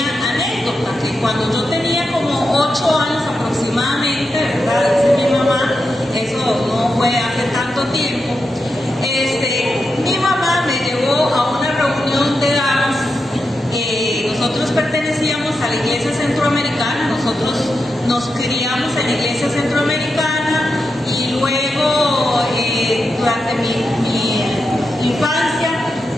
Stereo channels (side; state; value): both; normal; correlation 0.87